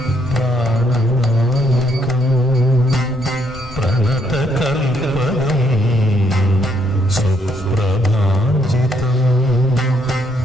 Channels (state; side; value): normal; both; correlation 0.72